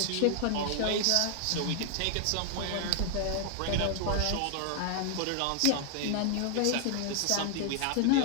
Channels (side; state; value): both; different; correlation 0.00